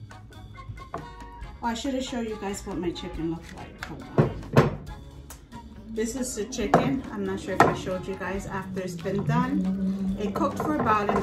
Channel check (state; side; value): identical; both; correlation 1.00